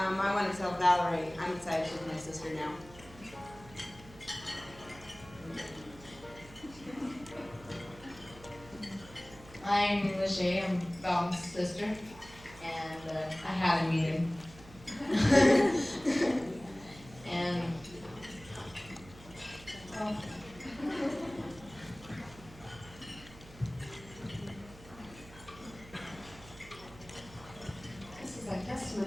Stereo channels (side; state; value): right; noise; hum, 19 dB below the sound